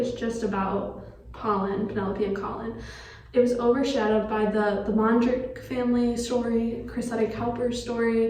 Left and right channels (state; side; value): identical; both; correlation 1.00